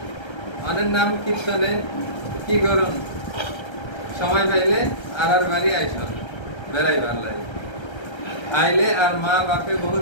অনের নাম কীর্তনে, কি গরম সময় পাইলে আর বাড়ি আইসব বেড়াই ভাল্লাই আইলে আর মা বাপে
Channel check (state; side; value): late; right; 1.3 ms